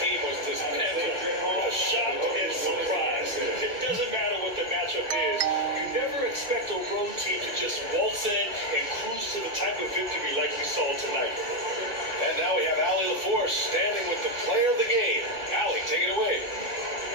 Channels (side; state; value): left; late; 2.6 ms